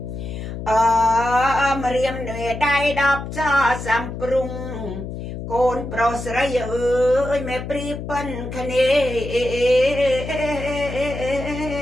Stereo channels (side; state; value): left; noise; hum, 8 dB below the sound